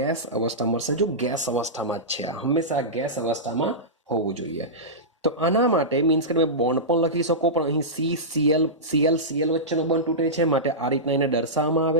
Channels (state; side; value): normal; both; correlation -0.15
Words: અવસ્થા મળશે. જો ગેસ અવસ્થામાં જ છે, હંમેશા ગેસ અવસ્થામાં હોવું જોઈએ. તો આના માટે મીન્સ કે તમે બોન્ડ પણ લખી શકો, પણ અહીં Cl વચ્ચેનો બંધ તૂટે છે, માટે આ રીતના એને દર્શાવવામાં